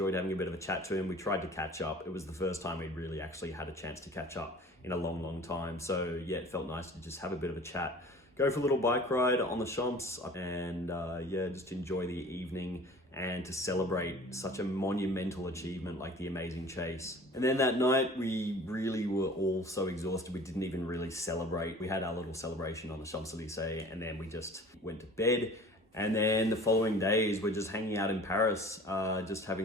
having a bit of a chat to him. We tried to catch up. It was the first time we'd really actually had a chance to catch up in a long, long time. So yeah, it felt nice to just have a bit of a chat, go for a little bike ride on the Champs, and yeah, just enjoy the evening and to celebrate such a monumental achievement like the amazing chase. And then that night, we really were all so exhausted, we didn't even really celebrate. We had our little celebration on the Champs-Élysées, and then we just went to bed. And then the following days, we're just hanging out in Paris, just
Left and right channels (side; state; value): both; normal; correlation 0.45